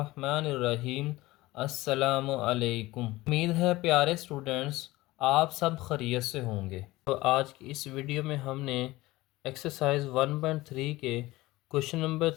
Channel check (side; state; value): right; quieter; 19.0 dB